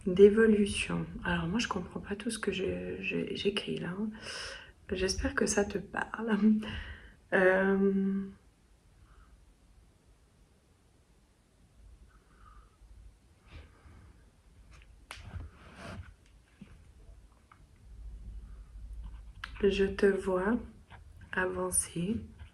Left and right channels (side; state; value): both; identical; correlation 1.00